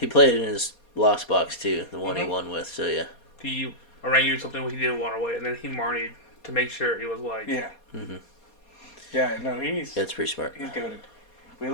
in his Lost Box too, the one he won with. So yeah. He Orangu something he didn't want away, and then he Marnied to make sure he was like. Yeah. Mm-hmm. Yeah, no, that's pretty smart. He's goated. We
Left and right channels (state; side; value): late; right; 4.2 ms